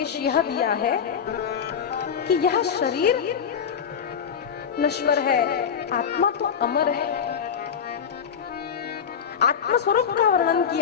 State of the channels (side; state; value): right; quieter; 7.4 dB